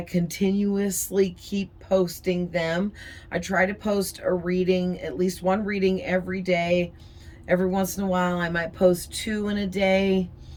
keep posting them. I try to post a reading, at least one reading every day. Every once in a while, I might post two in a day.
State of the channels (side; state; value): both; identical; correlation 1.00